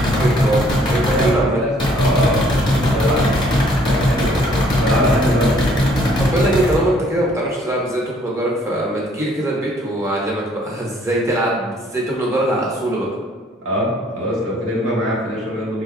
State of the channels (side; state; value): both; normal; correlation 0.62